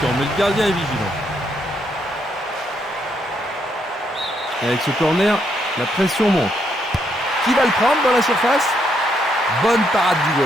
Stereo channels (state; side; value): normal; both; correlation 0.75